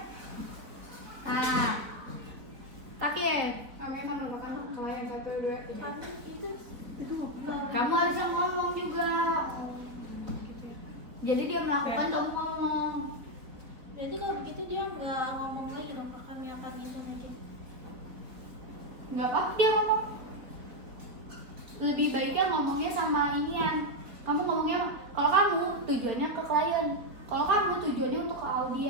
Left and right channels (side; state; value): left; late; 3.9 ms